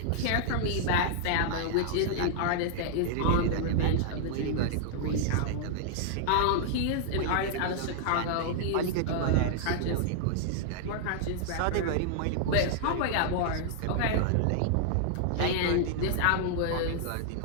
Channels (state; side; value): different; both; correlation -0.01